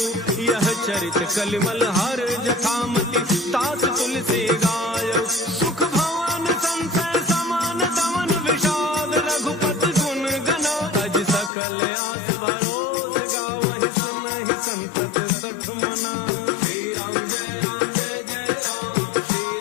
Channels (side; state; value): right; drops out; at 11.5 s